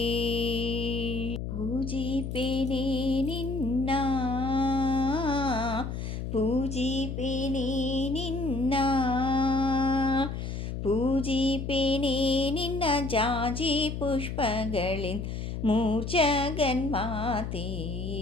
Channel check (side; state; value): left; noise; hum, 5 dB below the sound